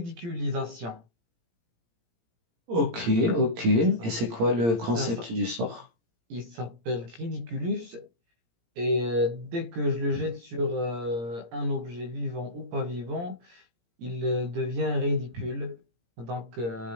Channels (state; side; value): late; left; 17 ms